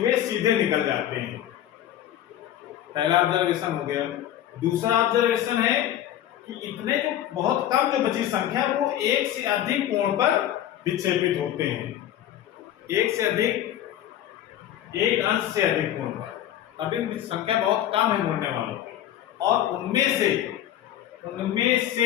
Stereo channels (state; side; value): quieter; right; 11.7 dB